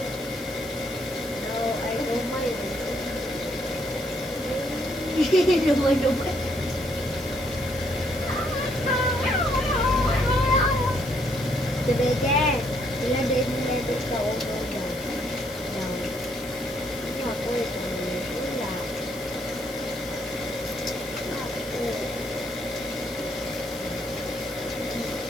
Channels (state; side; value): noise; left; hiss, 17 dB below the sound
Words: No, I don't mind. Lumay, lumay. Tumigil. Sila din nila sa ulo dyan. Yan. Ako, ito nila. Ako.